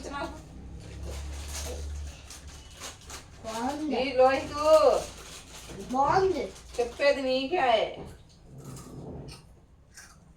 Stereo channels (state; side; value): identical; both; correlation 1.00